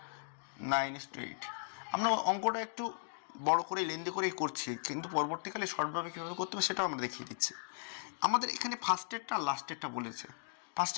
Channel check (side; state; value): right; silent; digital silence